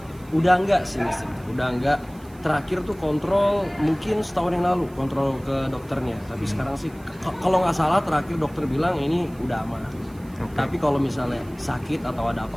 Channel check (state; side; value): noise; right; hiss, 27 dB below the sound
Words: Udah enggak sih, udah enggak. Terakhir tuh kontrol mungkin setahun yang lalu, kontrol ke dokternya. Tapi sekarang sih kalau nggak salah terakhir dokter bilang ini udah aman. Tapi kalau misalnya sakit atau ada